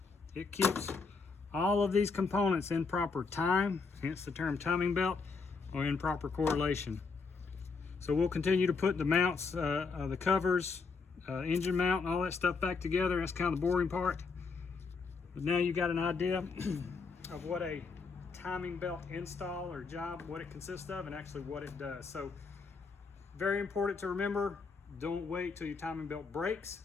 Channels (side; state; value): right; quieter; 4.7 dB